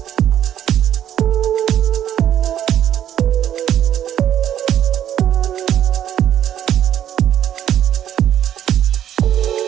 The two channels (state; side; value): quieter; left; 10.7 dB